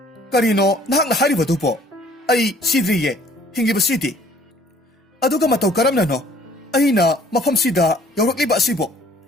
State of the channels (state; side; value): normal; both; correlation 0.57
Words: ꯀꯔꯤꯅꯣ ꯅꯍꯥꯛꯅ ꯍꯥꯏꯔꯤꯕꯗꯨꯕꯣ? ꯑꯩ ꯁꯤꯗ꯭ꯔꯤꯌꯦ, ꯍꯤꯡꯂꯤꯕꯁꯤꯗꯤ꯫ ꯑꯗꯨꯒ ꯃꯇꯧ ꯀꯔꯝꯅꯅꯣ ꯑꯩꯅ ꯃꯐꯝꯁꯤꯗ ꯌꯧꯔꯛꯂꯤꯕ ꯑꯁꯤꯕꯣ?